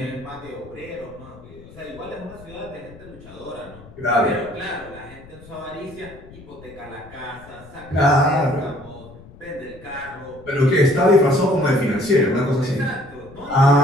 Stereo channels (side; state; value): left; noise; rumble, 20 dB below the sound